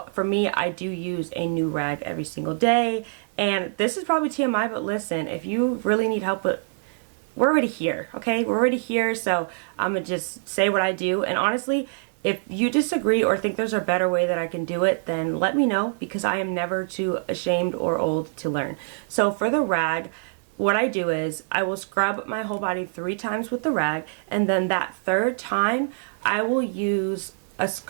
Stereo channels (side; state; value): left; silent; 61 dB below the other